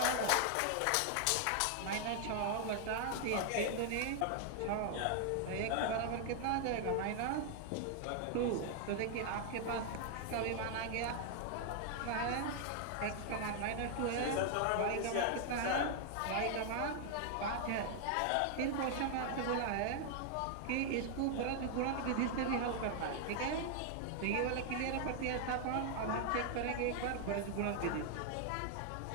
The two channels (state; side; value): different; both; correlation 0.00